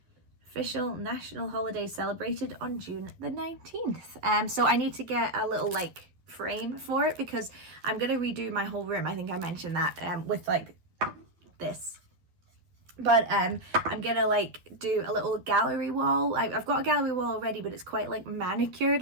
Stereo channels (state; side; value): late; left; 12 ms